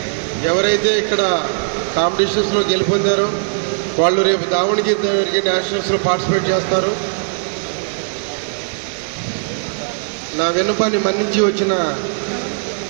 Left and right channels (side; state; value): left; silent; digital silence